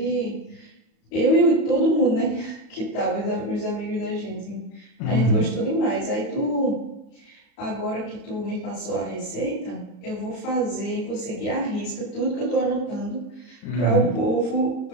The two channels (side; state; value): right; late; 34 ms